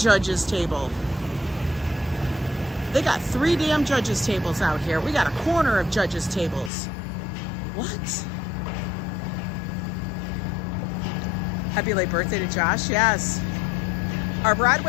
table. They got 3 damn judges' tables out here. We got a corner of judges' tables. What? Happy late birthday to Josh. Yes. Are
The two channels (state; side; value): drops out; right; at 6.7 s